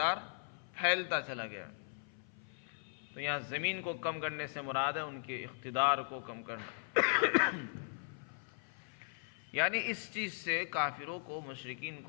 پھیلتا چلا گیا۔ تو یہاں زمین کو کم کرنے سے مراد ہے ان کے اقتدار کو کم کرنا۔ یعنی اس چیز سے کافروں کو، مشرکین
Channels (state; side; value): silent; right; 52 dB below the other